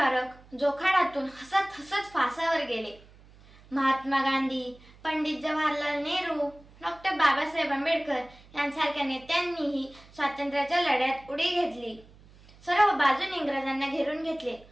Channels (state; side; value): noise; right; hum, 24 dB below the sound